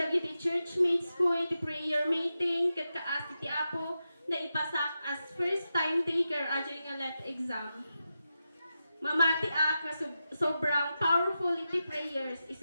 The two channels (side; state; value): both; inverted; correlation -0.89